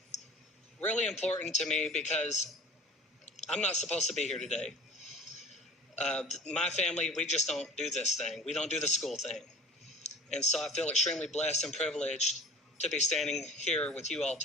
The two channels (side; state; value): both; normal; correlation 0.43